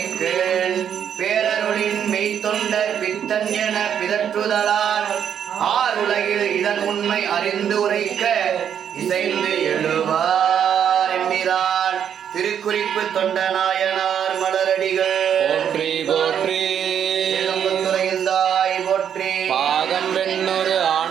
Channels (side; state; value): left; quieter; 8.7 dB